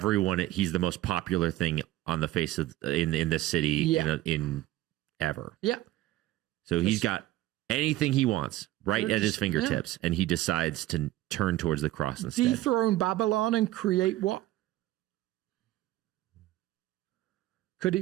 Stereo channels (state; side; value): quieter; left; 15.7 dB